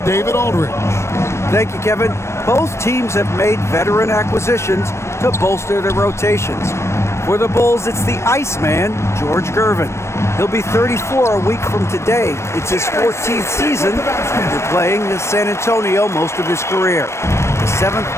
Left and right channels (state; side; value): late; right; 0.13 ms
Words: Aldridge. Thank you, Kevin. Both teams have made veteran acquisitions to bolster their rotations. For the Bulls, it's the Iceman, George Gervin. He'll be 34 a week from today. It's his 14th season after playing in San Antonio most of his career. The